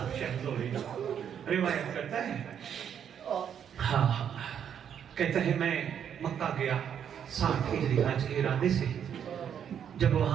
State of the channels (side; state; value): left; quieter; 8.6 dB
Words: شہزوری روایت کرتا ہے، ہاں کہتا ہے میں مکہ گیا 60 ہجری حج کے ارادے سے، جب